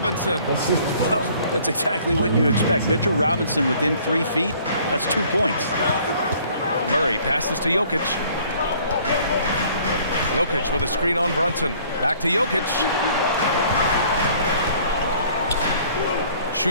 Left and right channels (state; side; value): inverted; both; correlation -0.57